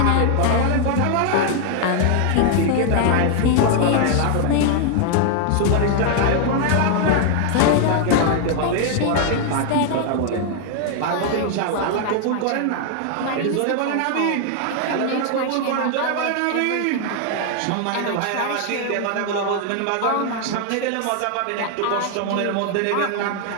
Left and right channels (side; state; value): both; different; correlation 0.00